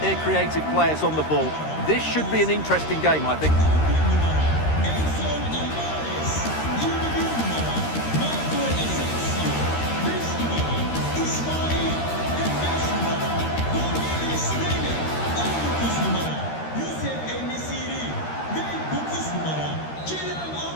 their creative players on the ball. This should be an interesting game, I think.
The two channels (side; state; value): right; late; 13 ms